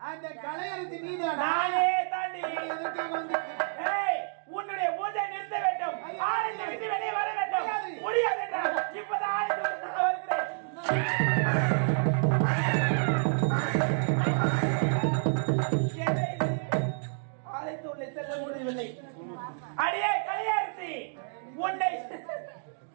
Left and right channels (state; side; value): silent; left; digital silence